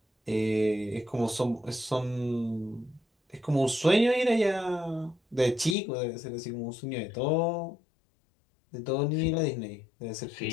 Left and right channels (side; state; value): right; drops out; at 5.8 s